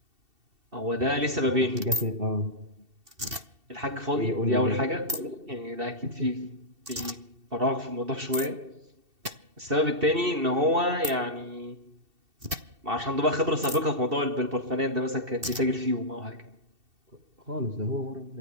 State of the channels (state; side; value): late; left; 2.7 ms